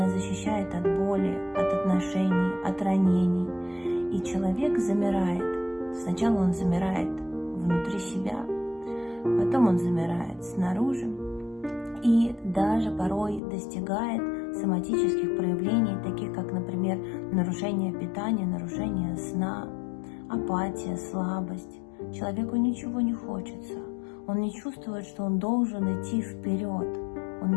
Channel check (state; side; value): drops out; right; at 13.4 s